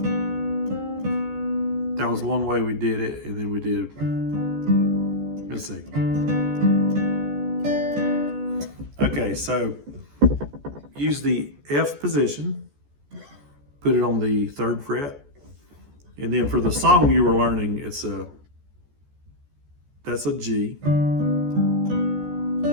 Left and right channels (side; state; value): left; late; 14 ms